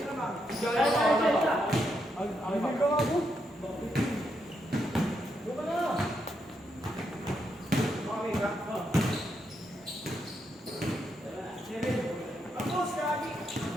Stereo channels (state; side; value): normal; both; correlation 0.80